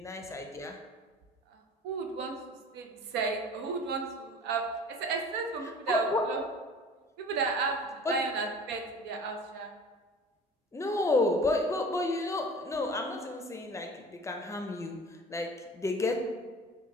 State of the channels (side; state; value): both; normal; correlation 0.42